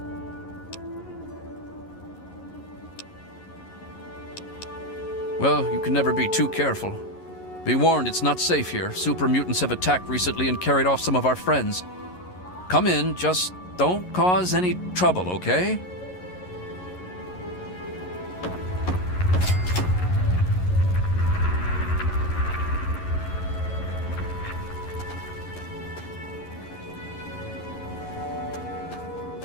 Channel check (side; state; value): right; late; 11 ms